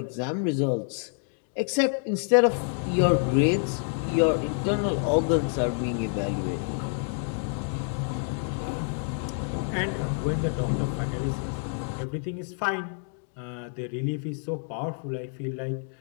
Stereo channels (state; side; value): silent; right; 59 dB below the other